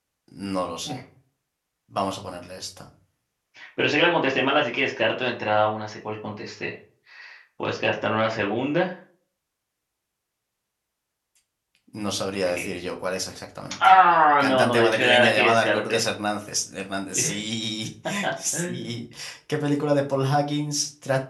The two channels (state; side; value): identical; both; correlation 1.00